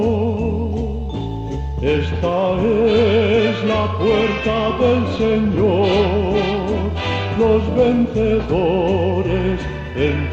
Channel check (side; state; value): both; identical; correlation 1.00